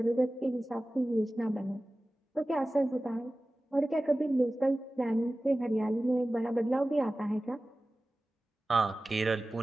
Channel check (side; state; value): both; normal; correlation 0.96